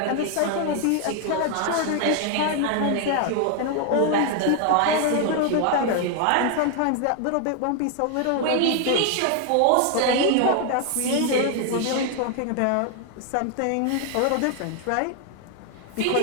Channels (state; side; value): different; both; correlation 0.00